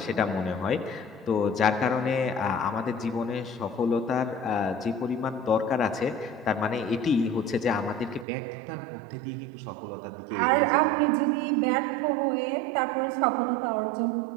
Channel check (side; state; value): left; drops out; at 8.2 s